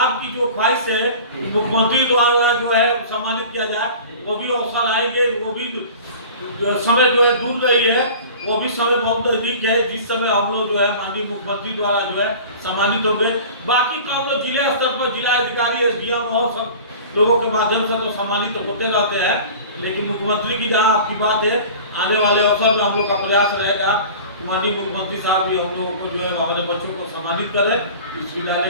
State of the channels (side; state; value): both; inverted; correlation -0.40